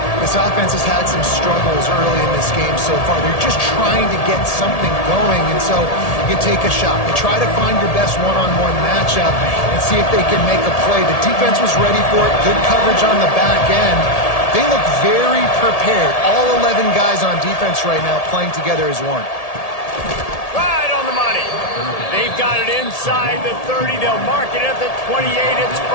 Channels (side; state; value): right; late; 1.8 ms